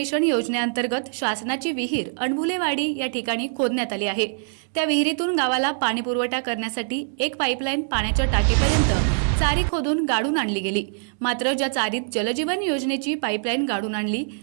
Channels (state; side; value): silent; left; digital silence